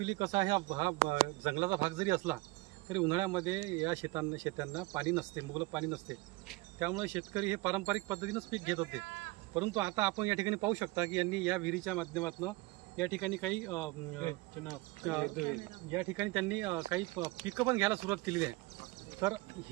कसा आहे, हा जंगलाचा भाग जरी असला तरी उन्हाळ्यामध्ये या शेतांना पाणी नसते, मुबलक पाणी नसते। त्यामुळे शेतकरी हे पारंपरिक पद्धतीनंच पीक घेत होते, परंतु आता आपण या ठिकाणी पाहू शकता की यांनी या विहिरीच्या माध्यमातून या ठिकाणी काही त्यांनी काही पिकं पण घ्यायला सुरुवात केलेली आहे। तर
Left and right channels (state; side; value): quieter; left; 22.5 dB